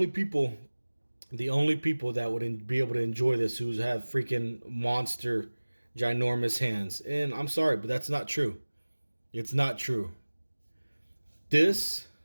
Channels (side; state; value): both; inverted; correlation -1.00